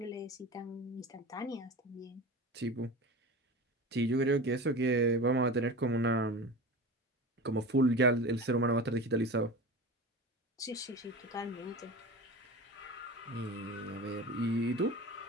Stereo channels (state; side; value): normal; both; correlation 0.31